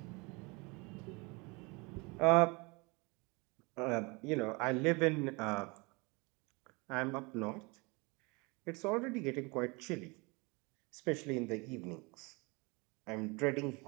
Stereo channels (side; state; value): left; quieter; 27.8 dB